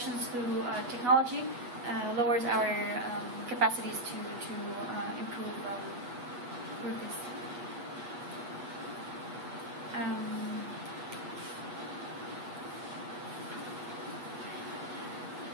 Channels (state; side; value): late; left; 8.2 ms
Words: through technology lowers our capacities to improve this.